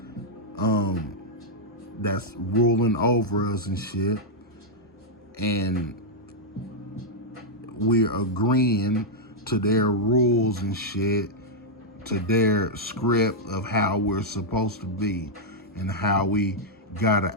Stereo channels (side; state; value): both; normal; correlation -0.05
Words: that's ruling over us and shit. And we're agreeing to their rules and shit, to their script of how we're supposed to be and how we gotta